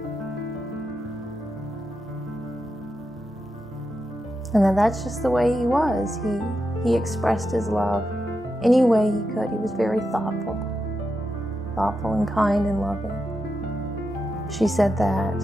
And that's just the way he was. He expressed his love any way he could. He was very thoughtful and kind and loving. She said that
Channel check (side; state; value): both; normal; correlation 0.87